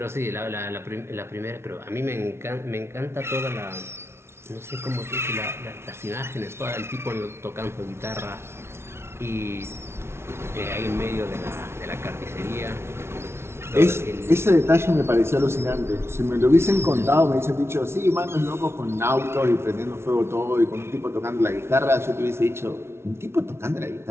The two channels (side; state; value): left; late; 0.12 ms